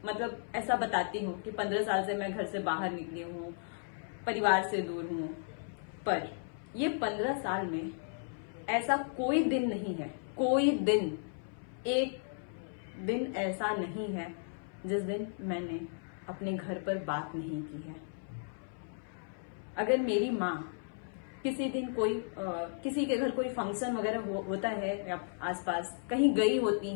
मतलब ऐसा बताती हूँ कि 15 साल से मैं घर से बाहर निकली हूँ, परिवार से दूर हूँ, पर ये 15 साल में ऐसा कोई दिन नहीं है, कोई दिन, एक दिन ऐसा नहीं है जिस दिन मैंने अपने घर पर बात नहीं की है। अगर मेरी माँ किसी दिन किसी के घर कोई फंक्शन वगैरह होता है या आसपास कहीं गई होती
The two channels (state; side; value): silent; right; 55 dB below the other